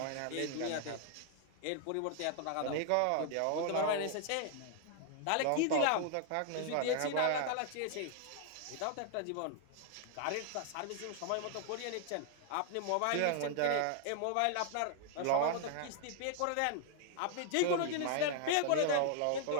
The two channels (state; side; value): different; both; correlation 0.00